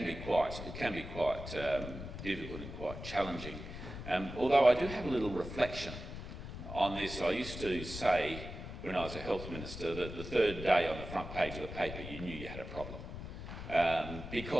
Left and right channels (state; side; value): noise; left; rumble, 9 dB below the sound